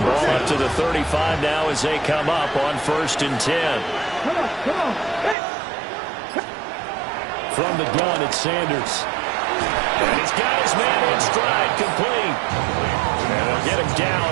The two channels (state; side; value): drops out; left; at 5.4 s